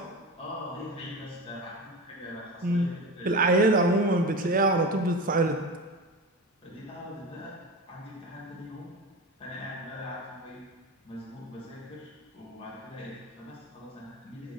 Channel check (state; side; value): normal; both; correlation 0.27